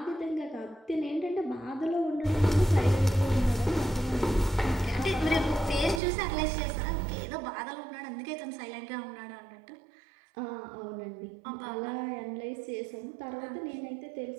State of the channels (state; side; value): drops out; left; at 6.0 s